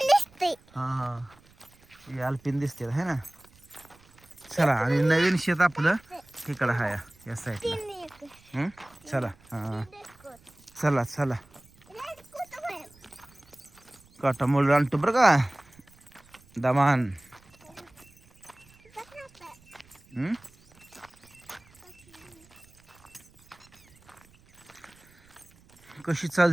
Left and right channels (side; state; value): right; noise; rumble, 28 dB below the sound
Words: हा हा हे अल्पिन दिसते है ना. चला आणि नवीन शेत आपलं इकडं आहे या साईडला. चला हा चला चला. काटा मोड आणतो बरं का दमान. कशी